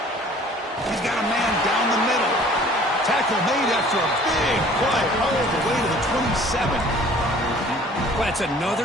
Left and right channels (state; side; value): normal; both; correlation 0.51